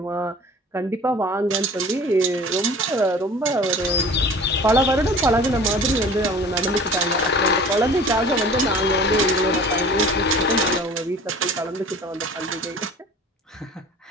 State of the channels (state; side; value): normal; both; correlation 0.44